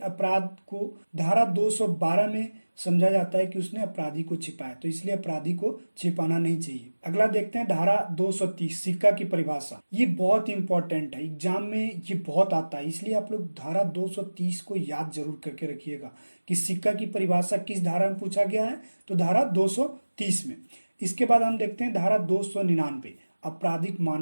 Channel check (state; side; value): inverted; both; correlation -1.00